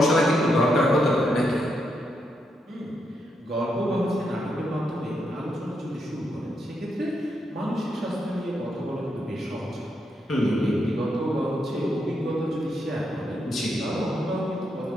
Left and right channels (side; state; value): both; normal; correlation 0.80